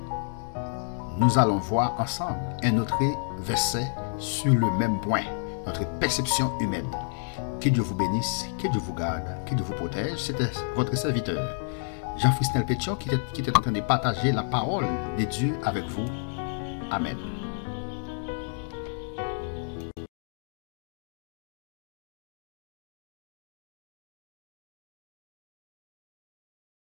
Nous allons voir ensemble un autre verset sur le même point, notre perception humaine. Que Dieu vous bénisse, que Dieu vous garde, que Dieu vous protège. C'était votre serviteur, Jean-Frisnel Pétion, qui était en train de partager la parole de Dieu avec vous. Amen.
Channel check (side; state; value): right; silent; digital silence